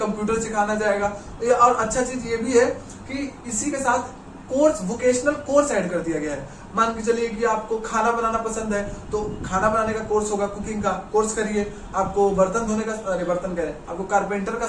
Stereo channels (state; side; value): identical; both; correlation 1.00